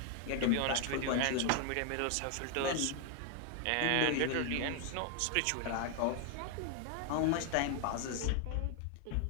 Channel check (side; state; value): both; different; correlation 0.00